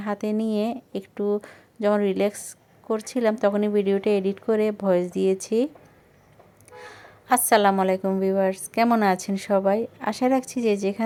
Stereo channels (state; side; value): identical; both; correlation 1.00